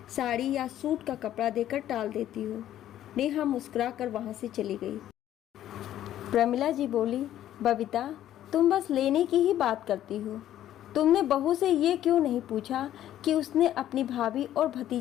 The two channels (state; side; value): quieter; right; 12.1 dB